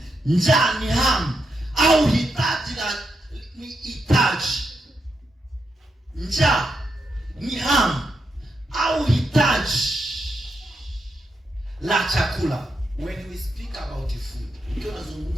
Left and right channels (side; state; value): both; normal; correlation 0.83